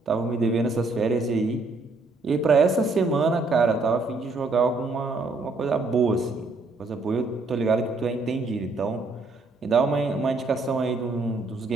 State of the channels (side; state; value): left; quieter; 3.4 dB